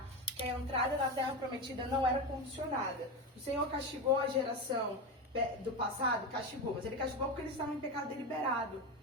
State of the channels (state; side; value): normal; both; correlation 0.18